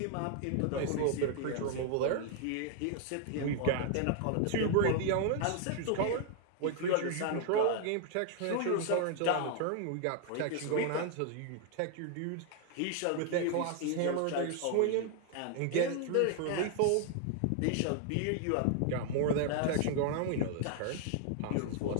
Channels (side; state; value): both; different; correlation 0.00